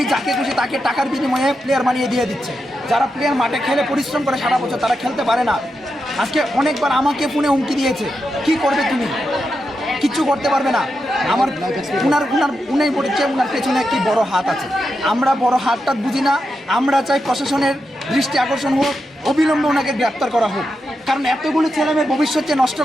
যাকে খুশি তাকে টাকার বিনিময়ে প্লেয়ার বানিয়ে দিয়ে দিচ্ছে। যারা প্লেয়ার মাঠে খেলে পরিশ্রম করে সারা বছর তারা খেলতে পারে না। আজকে অনেকবার আমাকে ফোনে হুমকি দিয়েছে, কি করবে তুমি? কিচ্ছু করতে পারবে না। আমার উনি বলেছে উনার পেছনে একটি বড় হাত আছে। আমরা বড় হাতটা বুঝি না। আমরা চাই প্রশাসনের দৃষ্টি আকর্ষণ হোক, অবিলম্বে ওনাকে গ্রেপ্তার করা হোক। কারণ এতগুলো ছেলেমেয়ের ভবিষ্যৎ যে নষ্ট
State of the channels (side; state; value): both; normal; correlation 0.87